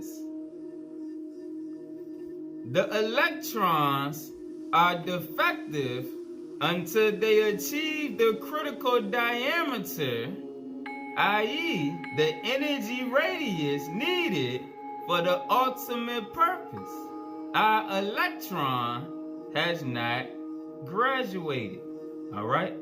The electrons are defective until they achieve the critical diameter, i.e., the energy radius needed for the ultimate purpose. Our electron has not graduated. All right?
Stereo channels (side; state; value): both; identical; correlation 1.00